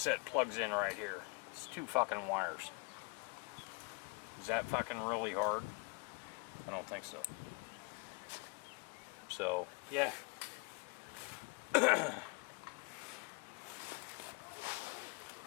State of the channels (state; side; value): quieter; right; 29.5 dB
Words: plugs in right here. It's two fucking wires. Is that fucking really hard? I don't think so. So, yeah.